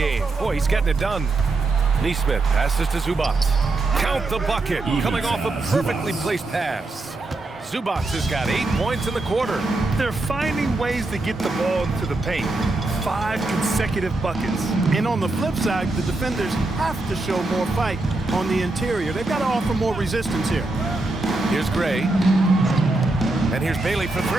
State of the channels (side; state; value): left; quieter; 3.1 dB